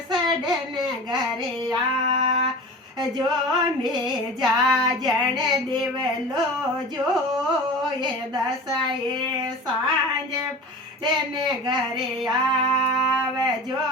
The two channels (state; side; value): normal; both; correlation 0.35